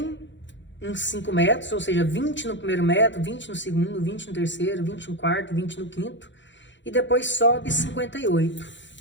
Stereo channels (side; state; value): right; late; 0.54 ms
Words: em 5 metros, ou seja, 20 no primeiro metro, 20 no segundo, 20 no terceiro, 20 no quarto, 20 no quinto, e depois sobe 58.